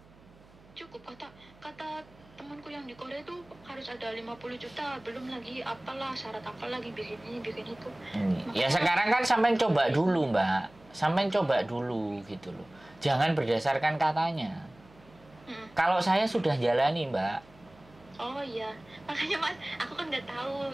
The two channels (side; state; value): right; noise; hum, 25 dB below the sound